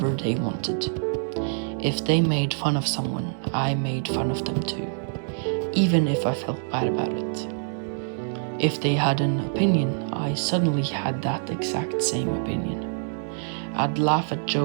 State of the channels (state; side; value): silent; left; 61 dB below the other